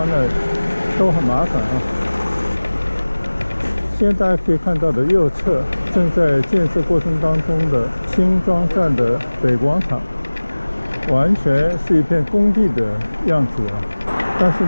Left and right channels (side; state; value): both; inverted; correlation -1.00